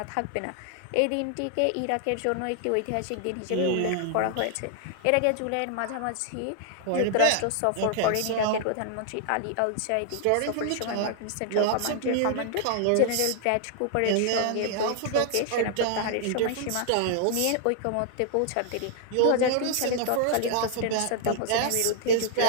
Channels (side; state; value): both; different; correlation 0.00